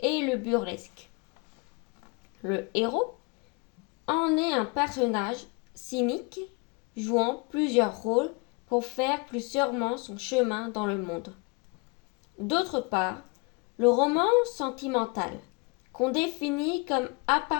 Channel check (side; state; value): right; quieter; 29.8 dB